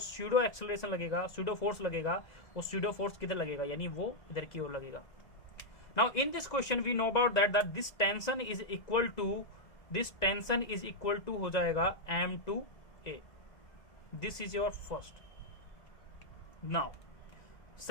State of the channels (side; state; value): right; late; 2.0 ms